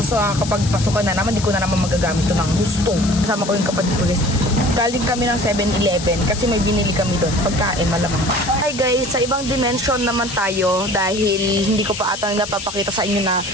Kapag pasukan na naman, di ko na naman magagamit ito ng gusto. Kasama ko yung kapatid ko guys. Galing kami ng 7-Eleven kasi may binili kami doon. Pagkain, malamang. Hi guys, sa ibang dimension naman tayo dahil hindi ko pa atang napapakita sa inyo na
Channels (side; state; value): left; noise; hiss, 10 dB below the sound